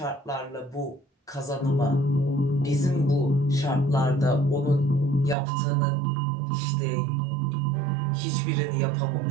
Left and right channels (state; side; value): drops out; left; at 5.4 s